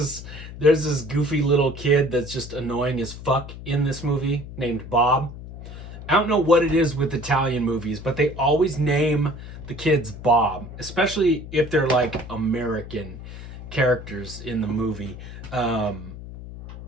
this goofy little kid that's just annoying as fuck in this movie named Bob. I don't know what it is with Italian movies, but they always name the kids Bob, especially if they're like American characters in the movie.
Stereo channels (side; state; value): left; noise; hum, 12 dB below the sound